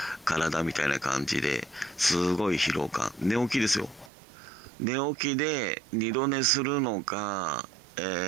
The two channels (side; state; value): left; drops out; at 4.1 s